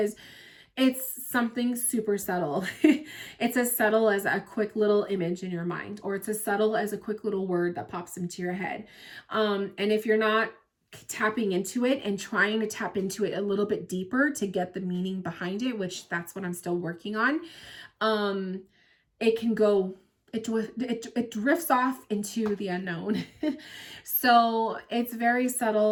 it's something super subtle. It's as subtle as a quick little image in your mind, or it's as subtle as a quick little word that pops into your head. And if you're not tapping into it and trying to tap into it a little bit deeper to get the meaning behind it, which that's what I'm still working on, it can go, it drifts off into the unknown. So it's very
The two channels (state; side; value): identical; both; correlation 1.00